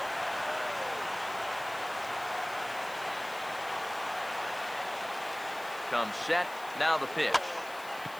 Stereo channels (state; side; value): noise; left; hiss, 18 dB below the sound